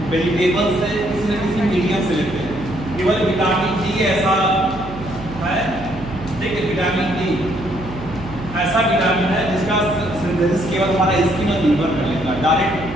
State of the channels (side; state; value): right; noise; hum, 13 dB below the sound